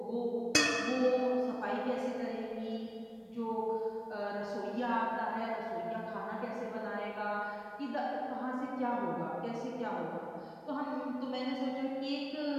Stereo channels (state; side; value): identical; both; correlation 1.00